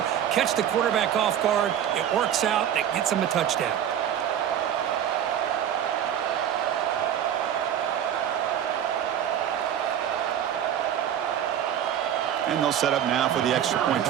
Catch the quarterback off guard. It works out. It gets them a touchdown. And they'll set up now for the extra point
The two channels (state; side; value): quieter; left; 9.9 dB